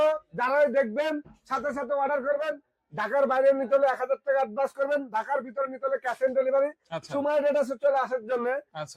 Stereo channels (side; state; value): both; identical; correlation 1.00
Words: যারাই দেখবেন সাথে সাথে অর্ডার করবেন। ঢাকার বাইরে নিতে হলে 1,000 টাকা অ্যাডভান্স করবেন, ঢাকার ভিতরে নিতে হলে ক্যাশ অন ডেলিভারি। আচ্ছা, সুমাইয়া ট্রেডার্সে চলে আসার জন্য